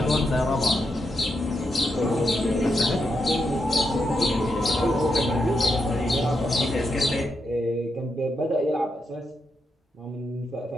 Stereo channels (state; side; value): normal; both; correlation 0.83